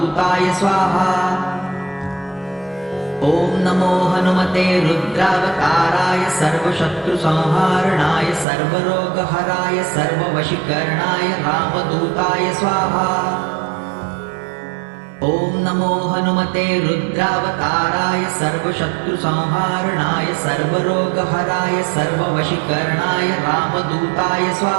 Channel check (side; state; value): left; drops out; at 8.5 s